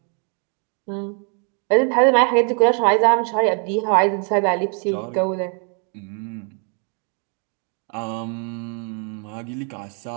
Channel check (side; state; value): left; quieter; 39.9 dB